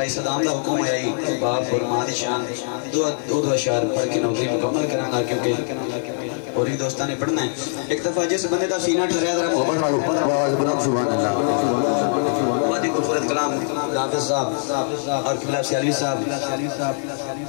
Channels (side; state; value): right; silent; 58 dB below the other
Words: सदाम का हुक्म है बाप और मां की शान दो अशार पढ़ के नौकरी मुकम्मल करांगा क्योंकि और ही दोस्तां ने पढ़ना है। एक दफा जिस बंदे का सीना ठहराया जरा मोहब्बत वालों आवाज बनाओ सुभान अल्लाह। वादी खूबसूरत कलाम हाफिज साहब और किबला सियालवी साहब